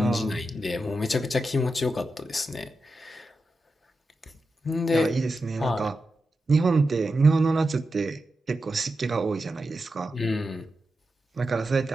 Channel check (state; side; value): normal; both; correlation 0.89